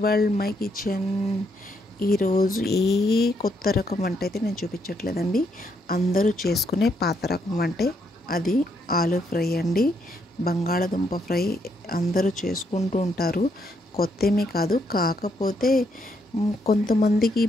world my kitchen. ఈరోజు ఏ కొత్త రకం వంట అయితే నేను చూపించట్లేదండి. అందరూ చేసుకునే పాత రకం వంటే, అది ఆలు ఫ్రై అండి. బంగాళదుంప ఫ్రై అందరూ చేసుకుంటూ ఉంటారు, కొత్తేమీ కాదు. కాకపోతే కొంతమందికి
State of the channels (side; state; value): both; normal; correlation 0.75